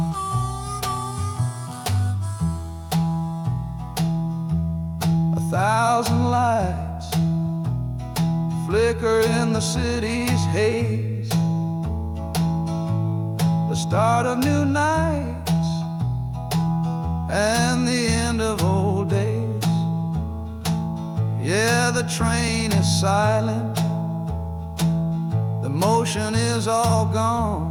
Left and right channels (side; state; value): both; identical; correlation 1.00